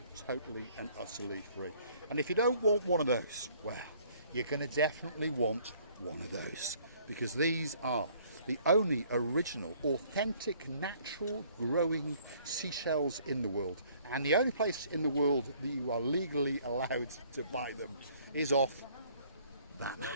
totally and utterly free. And if you don't want one of those, well, you're going to definitely want one of those, because these are the only original, authentic, natural growing seashells in the world. And the only place in the world that you are legally allowed to buy them is off that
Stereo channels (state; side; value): inverted; both; correlation -0.59